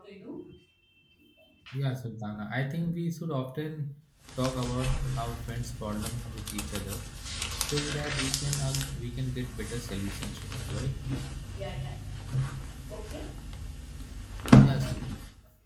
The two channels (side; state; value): both; identical; correlation 1.00